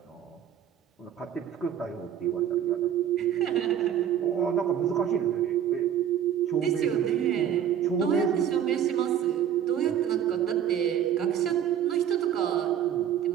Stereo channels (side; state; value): left; quieter; 9.5 dB